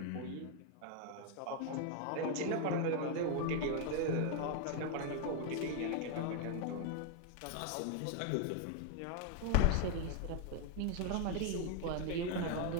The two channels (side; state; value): both; different; correlation 0.01